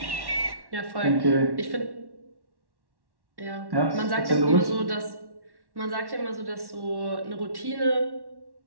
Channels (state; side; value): late; left; 1.1 ms